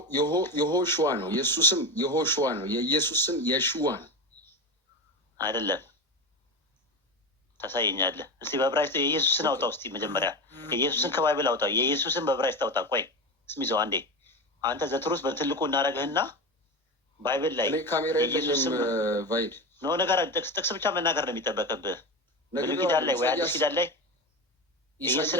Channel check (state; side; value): normal; both; correlation 0.21